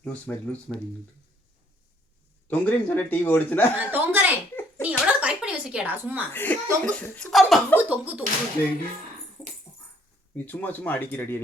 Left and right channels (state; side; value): normal; both; correlation 0.64